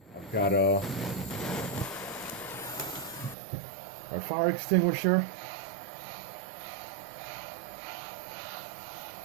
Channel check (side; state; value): left; drops out; at 3.4 s